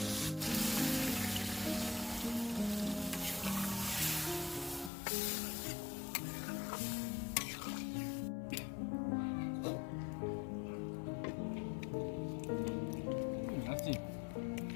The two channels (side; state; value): right; drops out; at 4.9 s